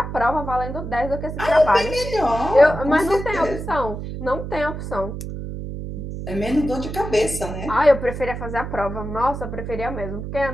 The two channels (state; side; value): noise; right; hum, 7 dB below the sound